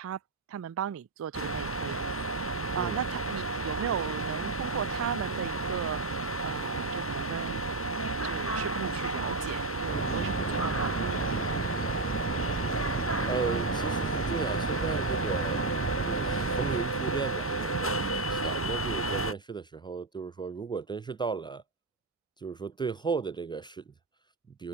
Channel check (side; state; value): left; quieter; 3.2 dB